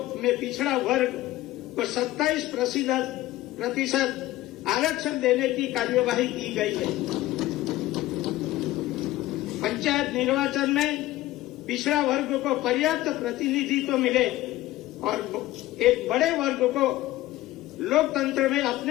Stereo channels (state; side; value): quieter; right; 16.3 dB